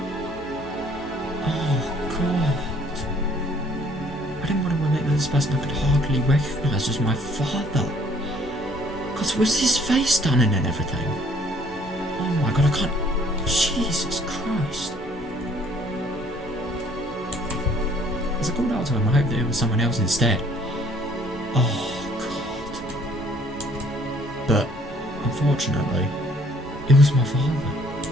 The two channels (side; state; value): both; normal; correlation 0.60